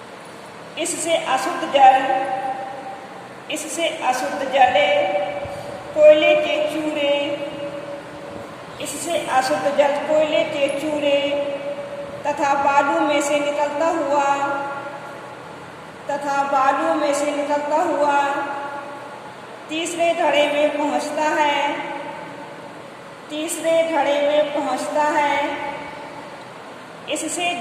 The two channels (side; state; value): both; identical; correlation 1.00